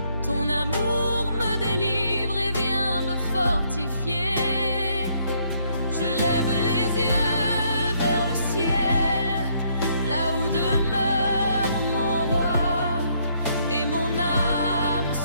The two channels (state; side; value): inverted; both; correlation -0.69